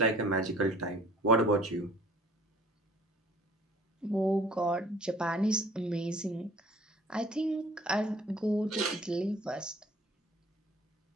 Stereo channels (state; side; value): normal; both; correlation 0.52